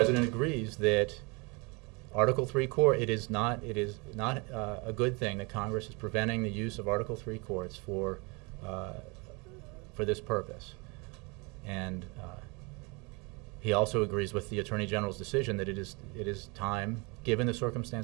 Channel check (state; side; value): quieter; left; 28.9 dB